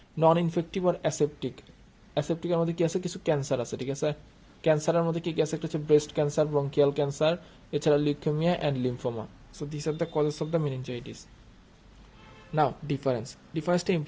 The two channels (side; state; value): both; identical; correlation 1.00